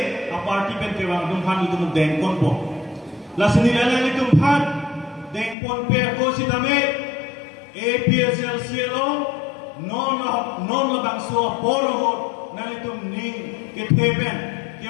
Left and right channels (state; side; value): drops out; right; at 5.6 s